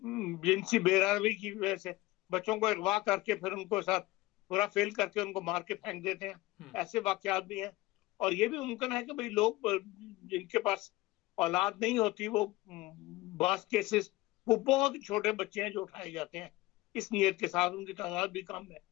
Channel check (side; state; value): right; quieter; 19.3 dB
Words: جنسی بے روی کی وجہ سے بچوں کو اغوا کر کے پھر ان کو ساتھ پورا فیل کر کے ان کو مار کے پھینک دیتے ہیں، ایسے واقعات بھی ہیں. اور یہ بھی ممکن ہے کہ بھئی لوگ جن کے پاس اولاد نہیں ہوتی وہ بعض کیسز وہ بہت چھوٹے بچے ہیں جو اٹھائے جاتے ہیں اس نیت کے ساتھ، ان کی تعداد بھی کم ہے.